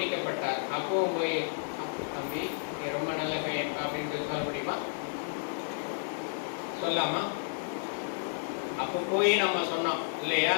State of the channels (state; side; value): silent; right; digital silence